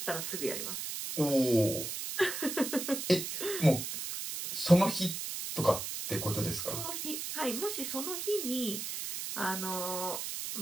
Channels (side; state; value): right; noise; hiss, 5 dB below the sound